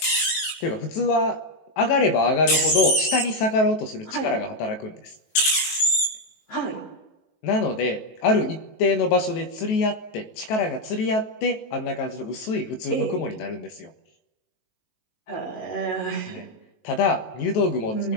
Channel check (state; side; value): late; right; 19 ms